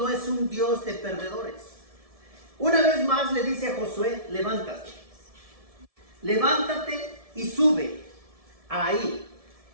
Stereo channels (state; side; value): late; left; 1.7 ms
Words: es un Dios de perdedores. Una vez más le dice a Josué: levántate. Levántate y sube ahí.